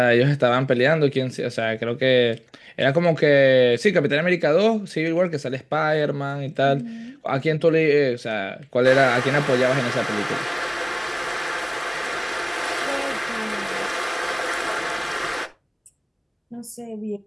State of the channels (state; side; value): identical; both; correlation 1.00